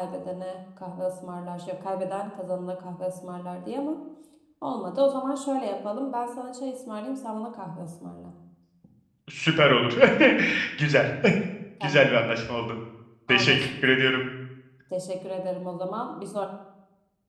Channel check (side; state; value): both; identical; correlation 1.00